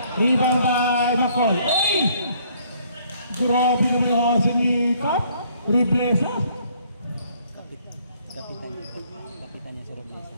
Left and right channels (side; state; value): both; inverted; correlation -0.63